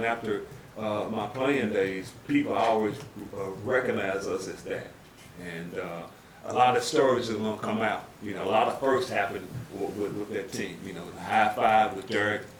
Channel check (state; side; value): identical; both; correlation 1.00